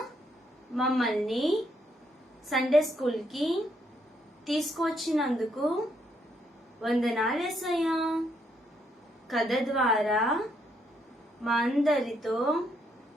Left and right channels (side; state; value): both; normal; correlation 0.74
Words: మమ్మల్ని సండే స్కూల్ కి తీసుకొచ్చినందుకు వందనాలు యేసయ్యా. కథ ద్వారా మా అందరితో